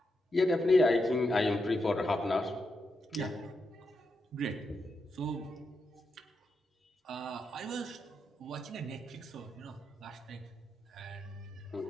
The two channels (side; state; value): both; normal; correlation 0.84